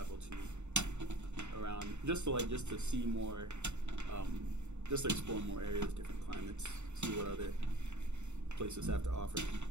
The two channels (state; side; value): late; left; 0.83 ms